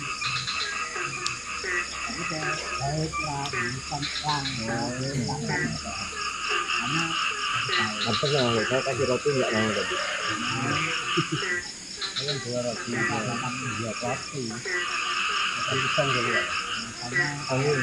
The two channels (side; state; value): both; identical; correlation 1.00